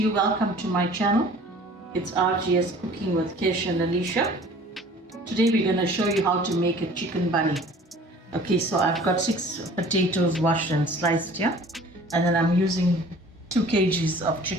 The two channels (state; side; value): normal; both; correlation 0.48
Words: Welcome to my channel. It's RGS Cooking with Kesh and Alicia. Today we're going to show you how to make a chicken bunny. Okay, so I've got 6 potatoes washed and sliced here. And then I'm using 2 kgs of